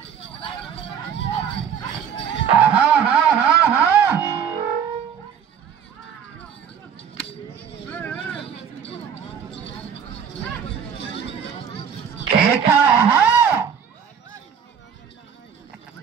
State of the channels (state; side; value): quieter; left; 7.8 dB